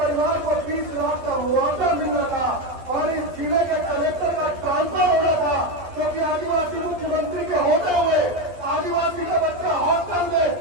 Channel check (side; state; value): left; late; 11 ms